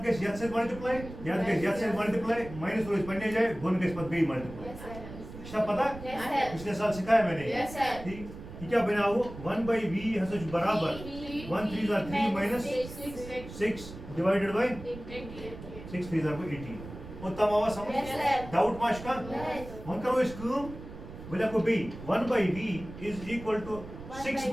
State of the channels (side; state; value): right; noise; rumble, 13 dB below the sound